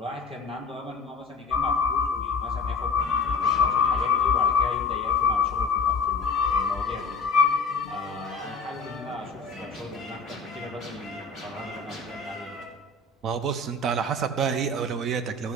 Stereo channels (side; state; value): right; quieter; 3.9 dB